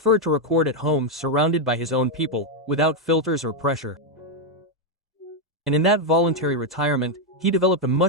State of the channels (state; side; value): normal; both; correlation 0.02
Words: to record at home surrounded by his own people, without filters or pressure. And in that voluntary retirement, he developed a